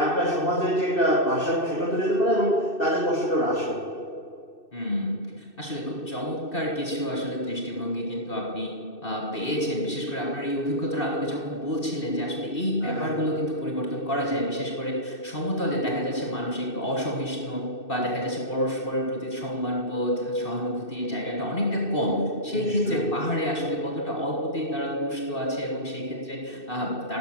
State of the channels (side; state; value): right; late; 2.6 ms